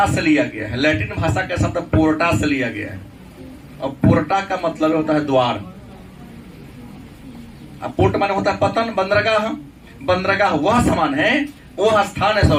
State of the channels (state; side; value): identical; both; correlation 1.00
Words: से लिया गया है, लैटिन भाषा का शब्द पोर्टा से लिया गया है, और पोर्टा का मतलब होता है द्वार। अब पोर्ट माने होता है पतन, बंदरगाह, बंदरगाह वह सामान है, वह स्थान है,